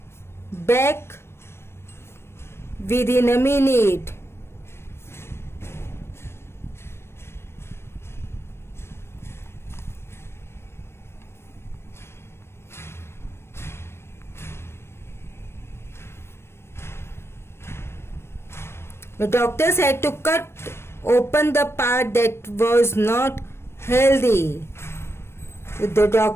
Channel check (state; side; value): late; right; 0.12 ms